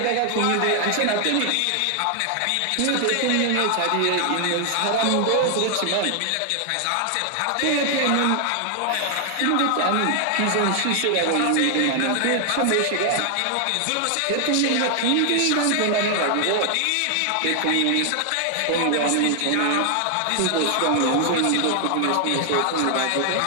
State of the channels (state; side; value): different; both; correlation 0.00